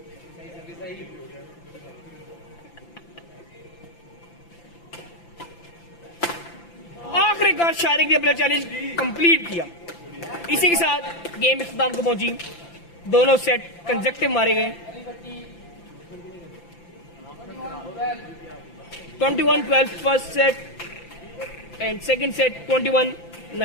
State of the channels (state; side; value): late; right; 5.9 ms